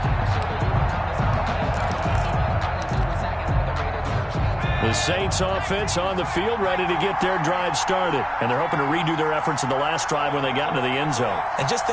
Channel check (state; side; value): identical; both; correlation 1.00